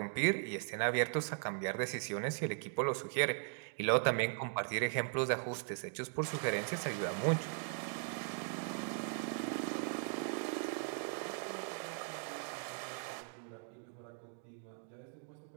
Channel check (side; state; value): left; silent; 52 dB below the other